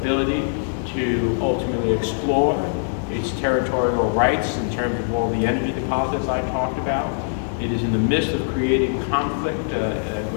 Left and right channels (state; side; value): silent; right; digital silence